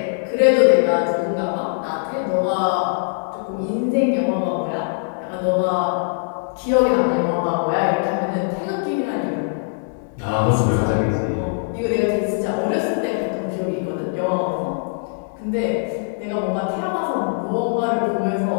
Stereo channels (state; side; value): silent; right; digital silence